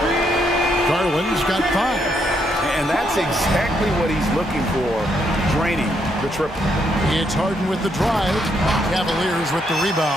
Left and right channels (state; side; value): normal; both; correlation 0.76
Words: Garland's got 5. And that's exactly what he's looking for, draining the triple. It's Harden with the drive. Cavaliers with the